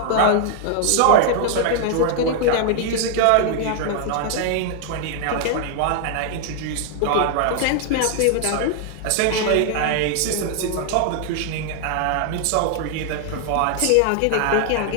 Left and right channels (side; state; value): both; different; correlation 0.00